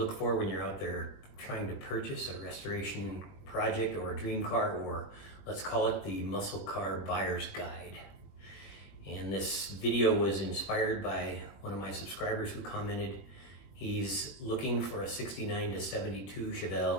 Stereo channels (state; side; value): late; right; 21 ms